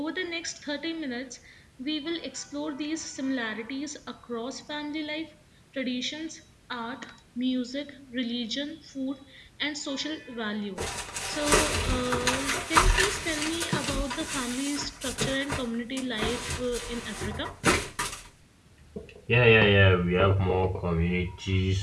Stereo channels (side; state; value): both; identical; correlation 1.00